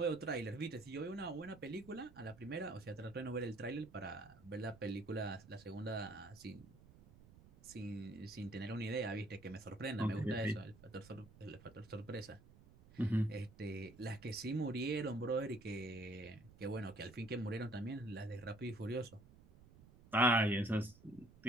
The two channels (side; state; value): right; noise; rumble, 22 dB below the sound